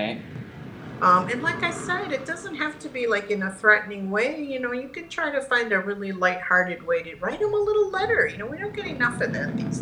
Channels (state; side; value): identical; both; correlation 1.00